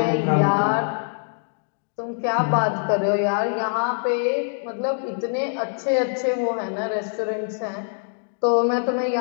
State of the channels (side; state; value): right; silent; digital silence